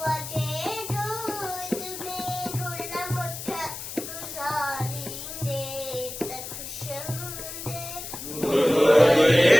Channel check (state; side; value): noise; left; hiss, 9 dB below the sound